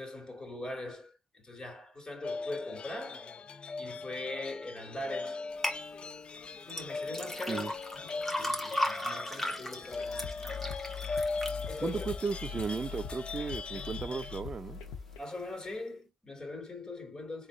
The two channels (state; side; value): normal; both; correlation 0.83